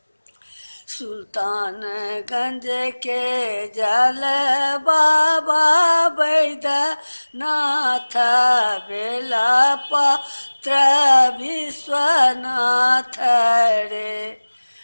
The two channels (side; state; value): both; inverted; correlation -1.00